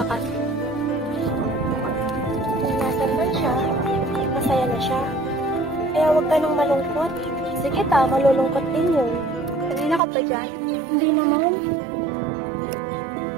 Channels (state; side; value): drops out; left; at 10.0 s